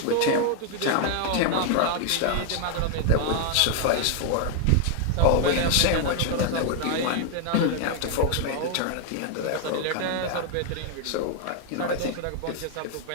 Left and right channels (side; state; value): both; different; correlation 0.00